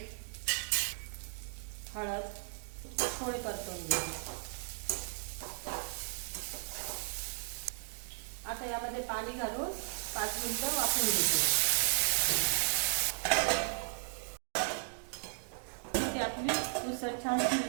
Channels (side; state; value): left; silent; digital silence